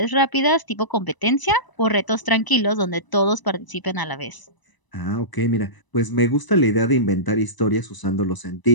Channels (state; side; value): late; right; 1.0 ms